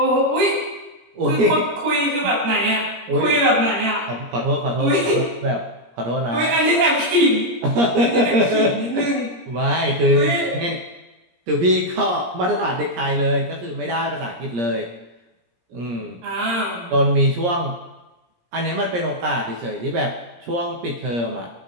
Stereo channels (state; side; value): late; left; 17 ms